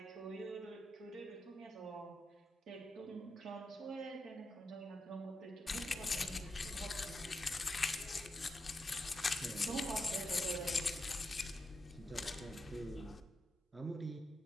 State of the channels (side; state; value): both; normal; correlation 0.86